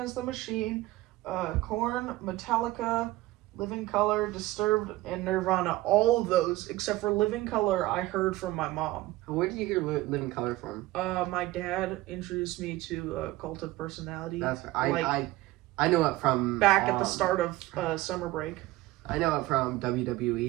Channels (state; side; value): quieter; left; 17.9 dB